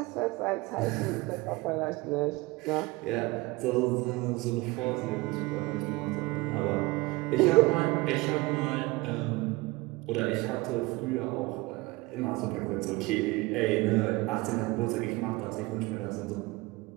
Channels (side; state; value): left; quieter; 22.5 dB